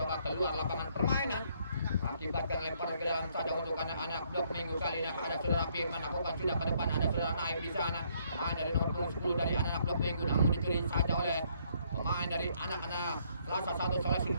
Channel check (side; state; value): both; inverted; correlation -0.68